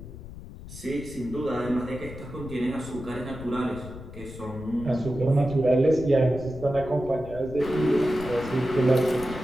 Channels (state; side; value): noise; left; rumble, 14 dB below the sound